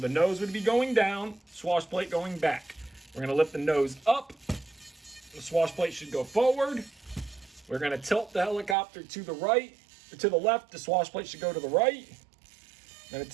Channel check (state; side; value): drops out; left; at 8.8 s